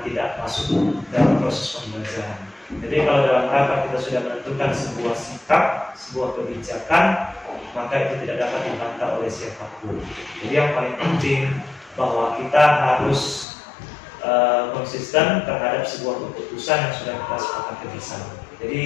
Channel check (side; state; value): right; drops out; at 13.5 s